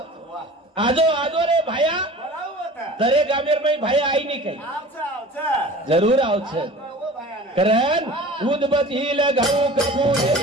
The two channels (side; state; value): both; normal; correlation 0.41